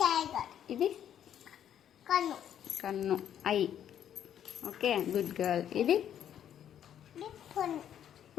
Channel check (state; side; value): quieter; right; 9.9 dB